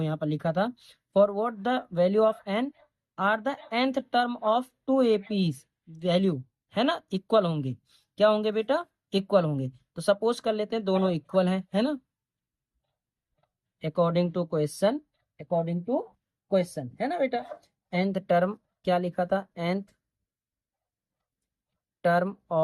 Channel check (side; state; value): both; identical; correlation 1.00